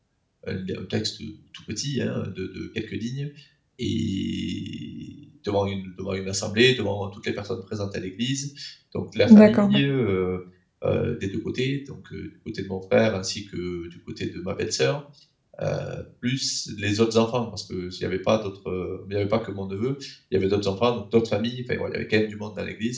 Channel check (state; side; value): identical; both; correlation 1.00